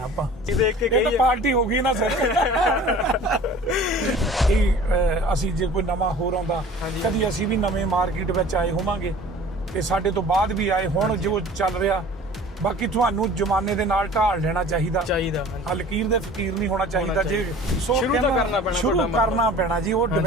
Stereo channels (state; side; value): normal; both; correlation 0.45